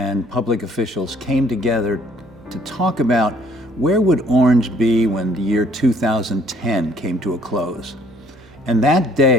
public officials came together to talk about where would Orange be when the year 2010 came to a close. And that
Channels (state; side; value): noise; right; hum, 26 dB below the sound